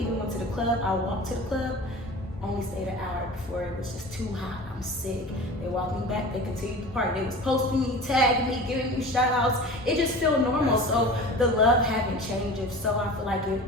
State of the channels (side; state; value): both; normal; correlation 0.36